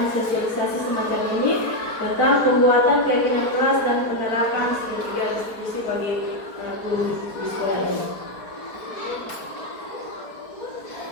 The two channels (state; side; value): late; right; 4.5 ms